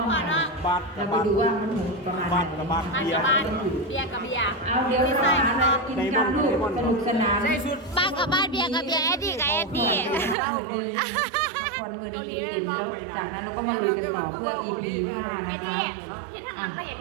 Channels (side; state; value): left; drops out; at 10.4 s